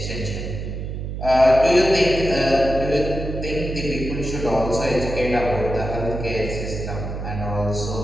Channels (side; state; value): right; noise; hum, 6 dB below the sound